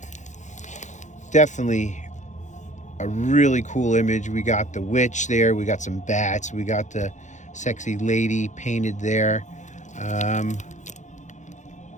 Definitely a really cool image. We got the witch there, we got some bats, we got the sexy lady painted there.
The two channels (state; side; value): late; right; 0.35 ms